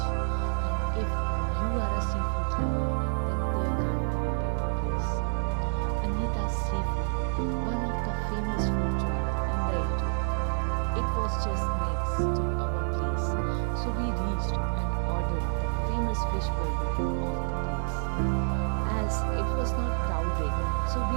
and if you are a seafood lover, then there can't be a better place. Anita's Seafood, one of the famous food joints in the area. It was just next to our place, so we reached and ordered the famous fish burger of the place. As it was not crowded, so we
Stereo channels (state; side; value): silent; left; 59 dB below the other